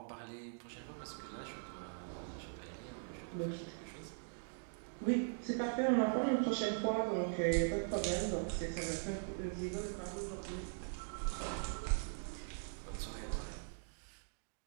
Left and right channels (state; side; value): silent; left; digital silence